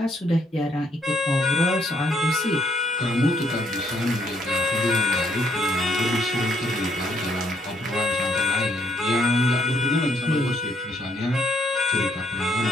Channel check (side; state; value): both; normal; correlation 0.68